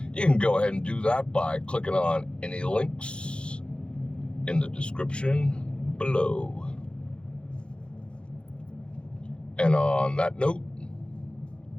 you can go ahead and do that by clicking on any links in the description below. And on that note,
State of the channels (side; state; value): right; late; 0.055 ms